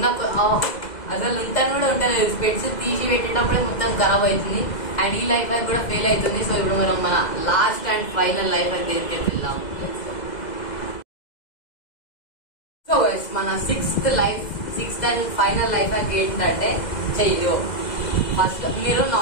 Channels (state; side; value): late; right; 2.0 ms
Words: అసలు ఉంటాను కూడా ఉండలేదు. స్పెట్స్ తీసి పెట్టేటప్పుడే మొత్తం ఖరాబ్ అవుతుంది అండ్ ఈ లైఫ్ బ్యాంక్ కూడా ఫెయిల్ అవుతుంది. సో ఇప్పుడు మనం మన last and final life bank దగ్గరికి వెళ్దాం. సో మన sixth and final life hack ఏంటంటే చెయ్యో. ఫస్ట్ మీరు